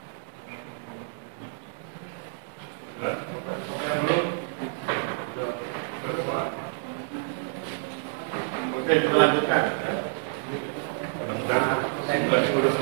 Oke, kita lanjutkan.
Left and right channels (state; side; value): silent; left; digital silence